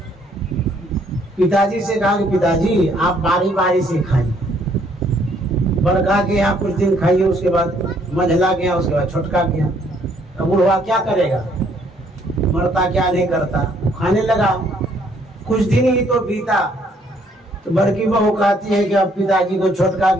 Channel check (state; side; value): normal; both; correlation 0.66